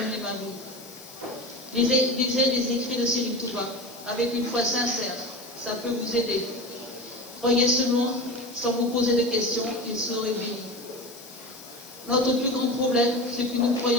ma vie. Lisez les écrits de Serigne Touba avec une foi sincère. Ça peut vous aider. Croyez seulement sans vous poser de questions, il serait béni. Notre plus grand problème, c'est que nous ne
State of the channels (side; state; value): left; noise; hiss, 18 dB below the sound